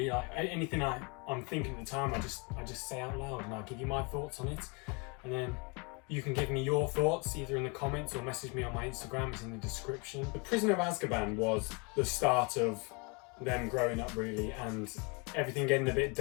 Like anything I'm thinking at the time, I just say out loud and I give you my thoughts on it. And then you can give me your thoughts either in the comments or message me on my Instagram, it's in the description. The Prisoner of Azkaban was the start of them growing up really, and everything getting a bit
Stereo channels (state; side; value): quieter; right; 30.7 dB